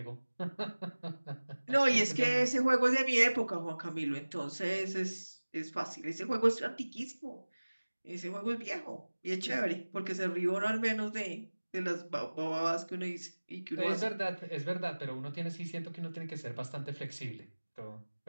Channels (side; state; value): both; inverted; correlation -1.00